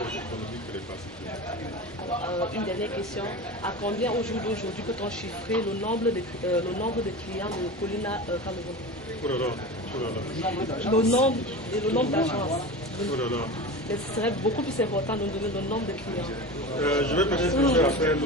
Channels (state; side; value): normal; both; correlation 0.29